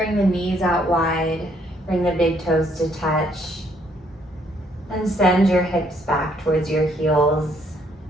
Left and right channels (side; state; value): both; normal; correlation 0.68